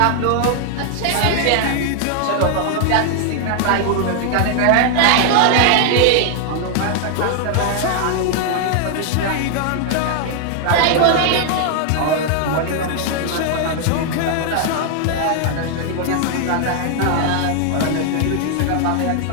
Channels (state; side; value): different; both; correlation 0.00